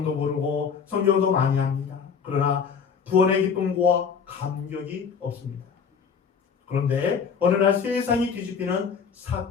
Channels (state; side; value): quieter; right; 6.3 dB